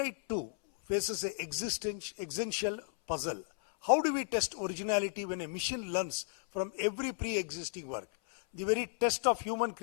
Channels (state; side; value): silent; right; 55 dB below the other